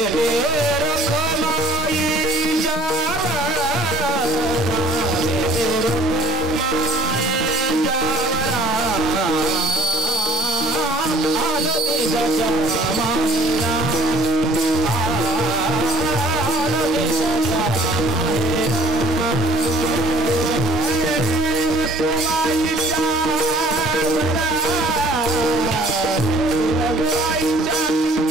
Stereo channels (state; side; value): normal; both; correlation 0.55